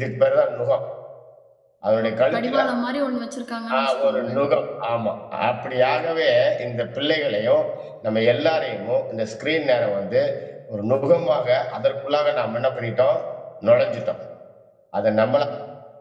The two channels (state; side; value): identical; both; correlation 1.00